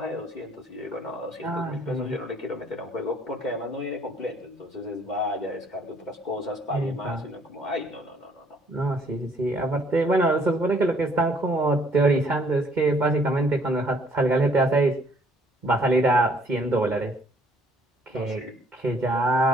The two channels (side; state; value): both; normal; correlation 0.62